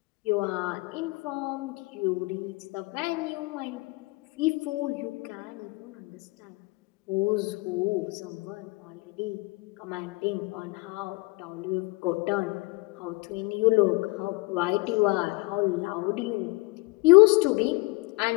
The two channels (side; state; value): right; quieter; 24.8 dB